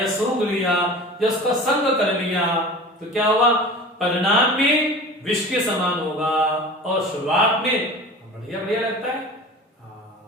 सूंघ लिया या उसका संग कर लिया, तो क्या हुआ? परिणाम में विष के समान होगा और शुरुआत में बढ़िया बढ़िया लगता है।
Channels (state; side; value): normal; both; correlation 0.37